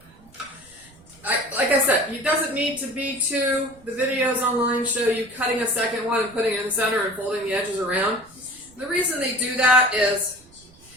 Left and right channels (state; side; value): noise; right; rumble, 26 dB below the sound